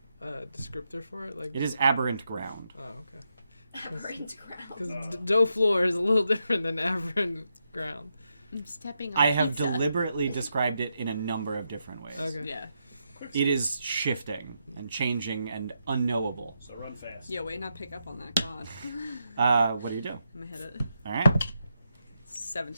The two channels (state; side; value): inverted; both; correlation -0.84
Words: a descriptor for it. Like It is aberrant ground. Oh, okay. Aberrant ground. Because dough floor is a little different than aberrant ground. I'm stepping on I have pizza. deliberately described it in a number of different ways. Okay. Yeah. It is shifting and changing and unknowable. So run fast. Yo, wait, not pick up on that, God. What do you do? I'm gonna hit it. All right,